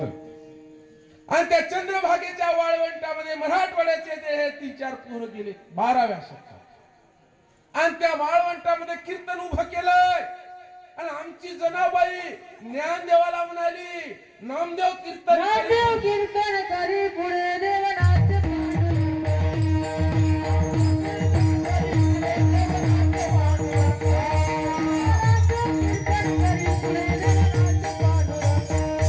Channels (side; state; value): both; identical; correlation 1.00